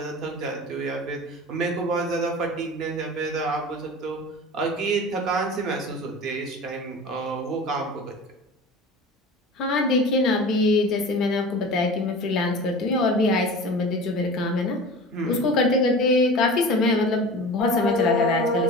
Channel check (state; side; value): normal; both; correlation 0.36